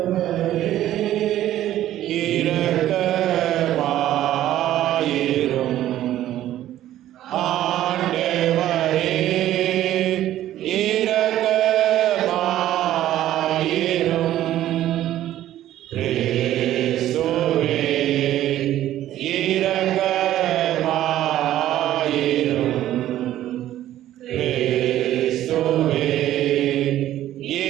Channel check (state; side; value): quieter; left; 13.1 dB